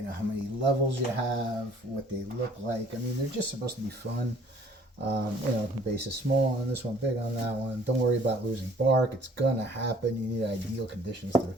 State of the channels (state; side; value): normal; both; correlation 0.56